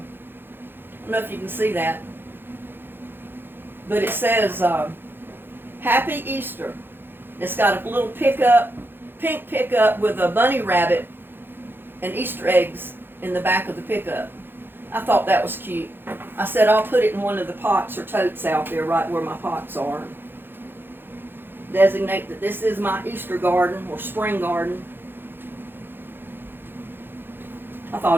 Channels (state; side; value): late; left; 0.10 ms